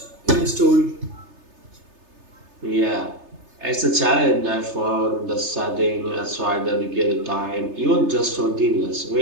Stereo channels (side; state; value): left; late; 3.3 ms